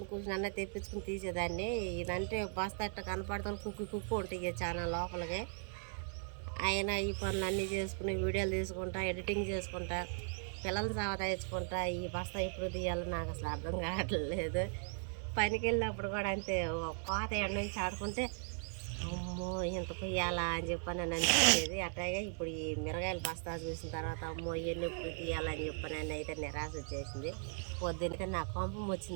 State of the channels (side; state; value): left; silent; 52 dB below the other